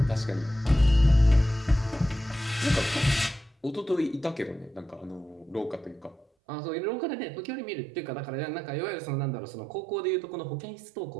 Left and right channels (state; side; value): drops out; left; at 6.2 s